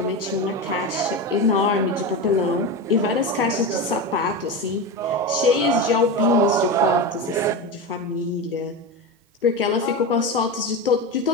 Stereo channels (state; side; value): normal; both; correlation 0.20